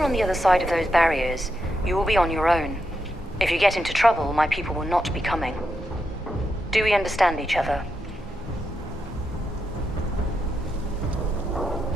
on the other side of those barriers, you will be on your own. If you get into trouble, my people will not be coming. Do we understand each other?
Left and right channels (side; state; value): both; normal; correlation 0.84